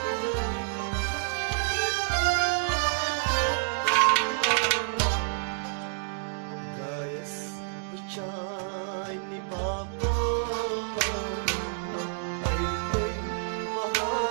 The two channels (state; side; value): silent; left; digital silence